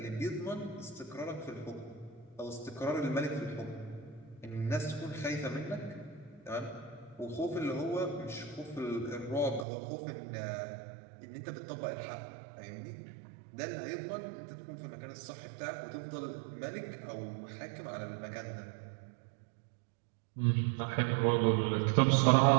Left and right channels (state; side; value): drops out; left; at 9.7 s